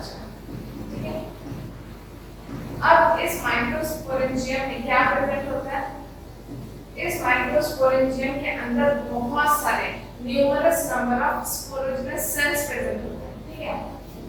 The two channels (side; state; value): both; identical; correlation 1.00